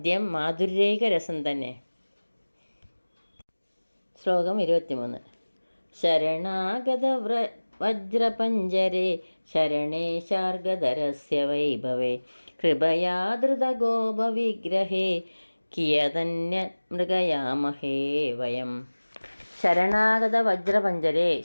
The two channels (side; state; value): both; inverted; correlation -1.00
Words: മാധുര്യൈക രസം തന്നെ. ശ്ലോകം 23. ശരണാഗത വജ്രപഞ്ജരേ ശരണേ ശാർഗധരസ്യ വൈഭവേ കൃപയാ ധൃതഗോപവിഗ്രഹേ കിയതന്യ മൃഗയാമഹേ വയം. ശരണാഗത വജ്രപഞ്ചരേ,